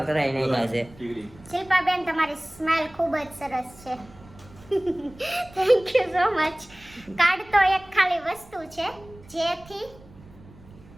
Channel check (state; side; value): noise; right; rumble, 22 dB below the sound